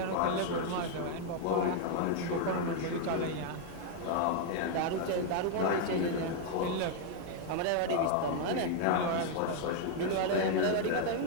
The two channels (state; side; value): different; both; correlation 0.00